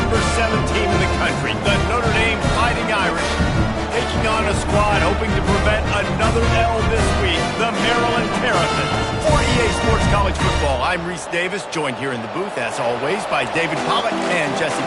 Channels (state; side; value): identical; both; correlation 1.00